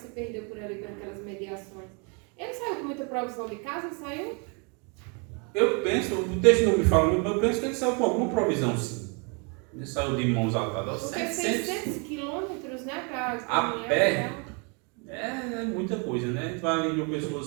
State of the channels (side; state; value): left; quieter; 35.0 dB